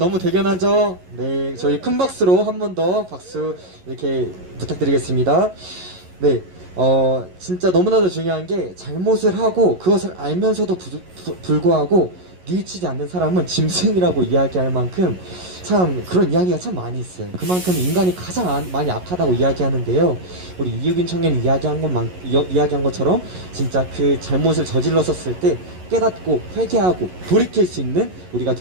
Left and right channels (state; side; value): late; left; 11 ms